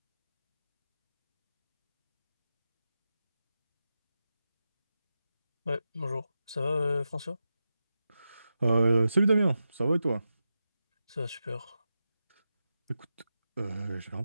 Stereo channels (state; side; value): inverted; both; correlation -0.90